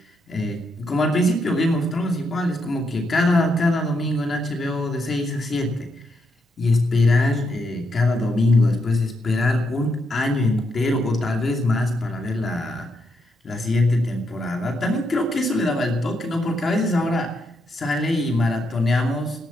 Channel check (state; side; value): normal; both; correlation 0.80